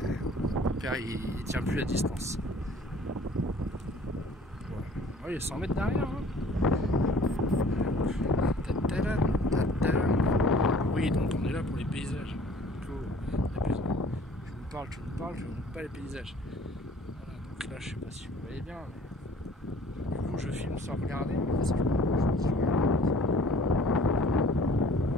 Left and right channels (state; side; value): normal; both; correlation 0.52